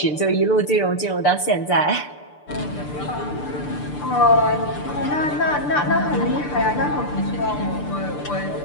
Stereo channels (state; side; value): late; right; 6.8 ms